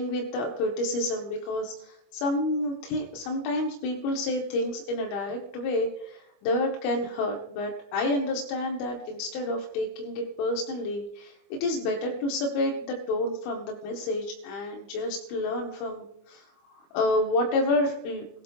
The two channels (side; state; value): right; late; 25 ms